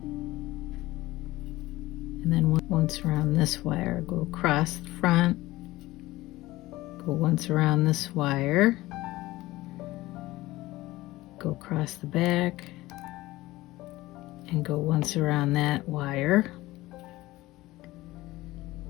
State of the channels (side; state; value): right; quieter; 18.1 dB